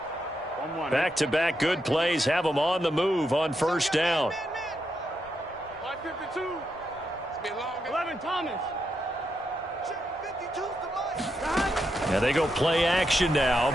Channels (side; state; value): both; normal; correlation 0.83